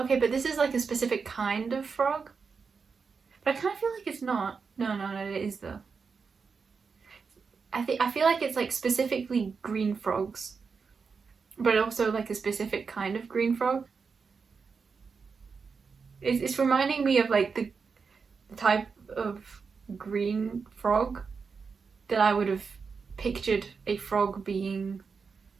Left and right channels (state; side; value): quieter; left; 5.3 dB